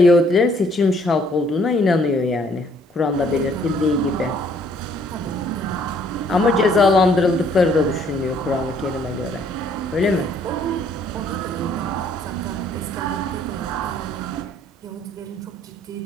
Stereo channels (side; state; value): both; normal; correlation 0.63